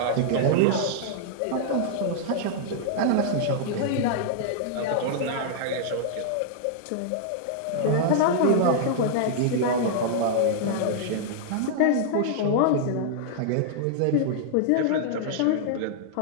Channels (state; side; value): different; both; correlation -0.01